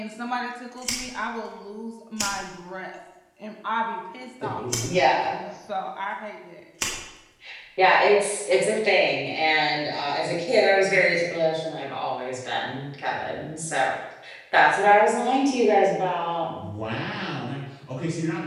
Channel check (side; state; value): both; identical; correlation 1.00